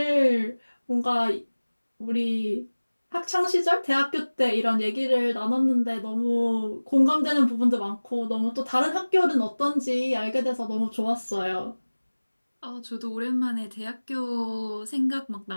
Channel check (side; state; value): both; inverted; correlation -1.00